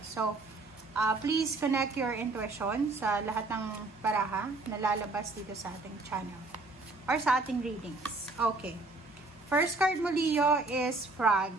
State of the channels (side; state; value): left; quieter; 3.3 dB